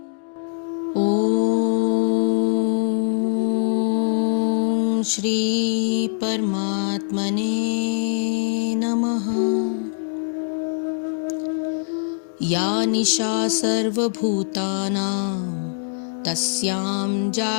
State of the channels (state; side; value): silent; right; digital silence